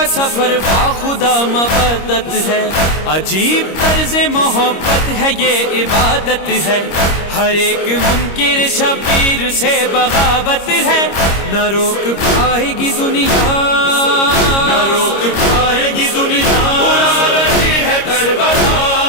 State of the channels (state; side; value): late; right; 25 ms